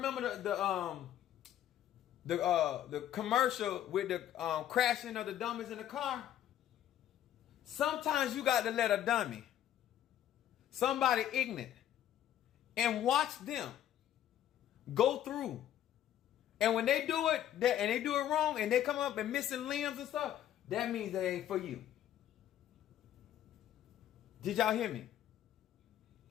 the commercial with the crashing of the dummies in the car? Sometimes you got to let a dummy, somebody ignorant, and watch them go through. And when they do it, and they do it wrong, and they come up and missing limbs and stuff, that means that ain't for you. Did y'all hear me?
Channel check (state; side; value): quieter; right; 11.5 dB